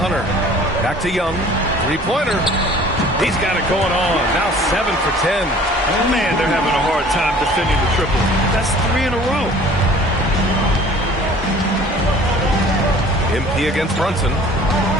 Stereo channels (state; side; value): normal; both; correlation 0.49